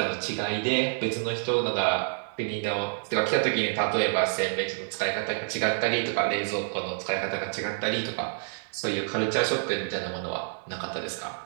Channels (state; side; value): silent; left; digital silence